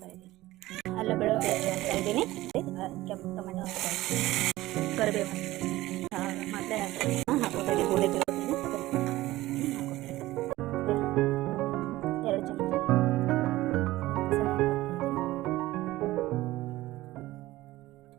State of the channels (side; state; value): left; quieter; 17.3 dB